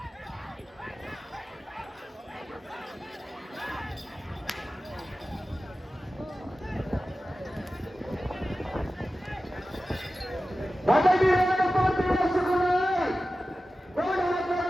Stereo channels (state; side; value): normal; both; correlation 0.95